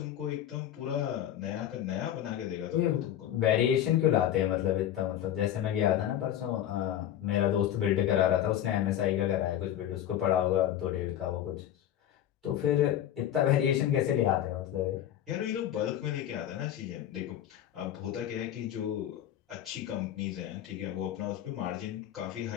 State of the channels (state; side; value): quieter; right; 11.2 dB